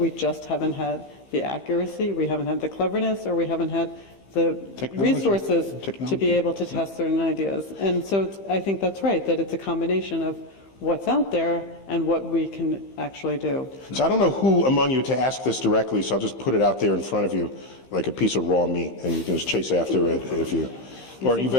just haven't had the accuracy, we haven't had the cleverness, or we haven't had the resources to be able to test certain ideas. And so I think that's right, that it's a combination of what's out there and what we can actually do. So I don't know who among you to ask this directly, so I'll just put it out there in front of you like a piece of raw meat, and you can just chase after it if you... Or are you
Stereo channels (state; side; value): late; right; 15 ms